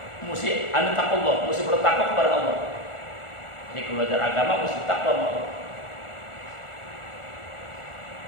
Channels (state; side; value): late; right; 1.4 ms